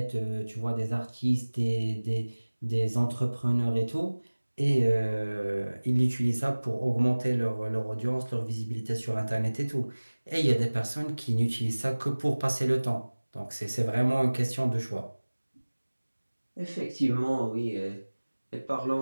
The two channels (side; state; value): both; inverted; correlation -1.00